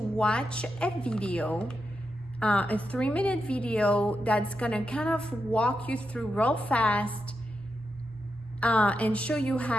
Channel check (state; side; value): normal; both; correlation 0.86